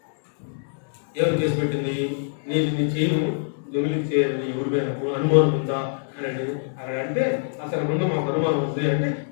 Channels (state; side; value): silent; right; digital silence